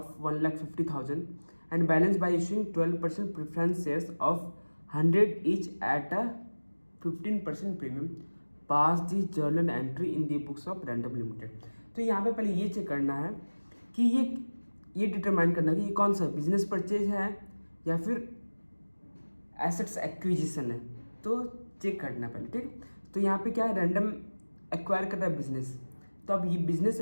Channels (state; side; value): inverted; both; correlation -1.00